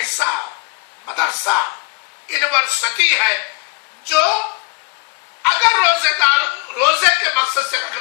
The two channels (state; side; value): quieter; right; 28.6 dB